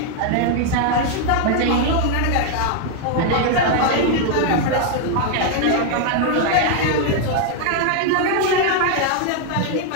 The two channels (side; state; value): both; different; correlation 0.00